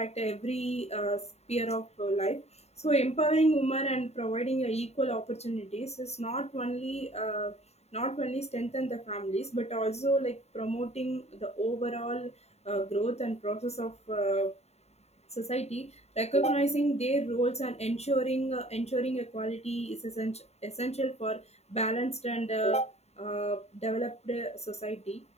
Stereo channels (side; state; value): right; late; 0.31 ms